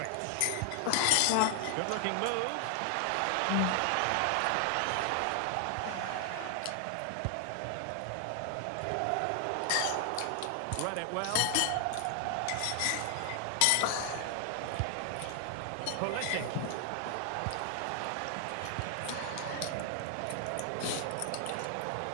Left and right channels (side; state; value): both; different; correlation 0.00